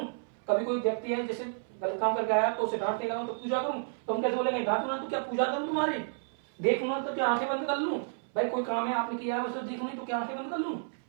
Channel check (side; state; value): left; silent; 57 dB below the other